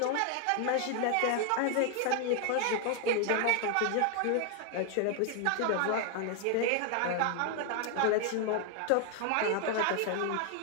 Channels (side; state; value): both; different; correlation 0.00